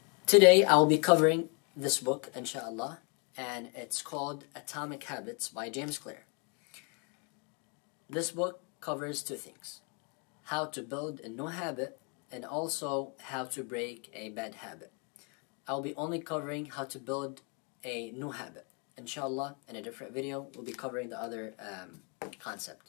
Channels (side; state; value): right; quieter; 35.5 dB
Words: Today, I will be covering this book, inshallah, and it's called Atomic Habits by James Clear. This book covers two things: how to build a new habit and also how to break a bad habit. I'll be only covering how to build a new habit. Inshallah, in a different video, we'll be covering the other